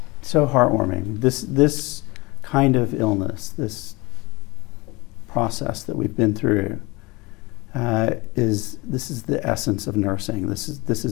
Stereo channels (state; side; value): quieter; right; 24.2 dB